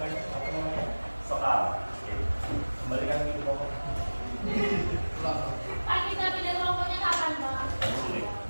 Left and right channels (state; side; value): inverted; both; correlation -1.00